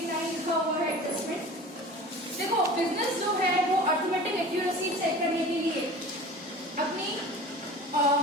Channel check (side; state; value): both; normal; correlation 0.39